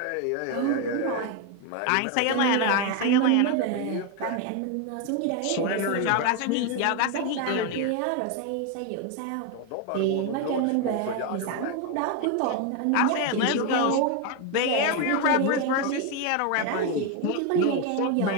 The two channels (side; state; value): both; different; correlation 0.02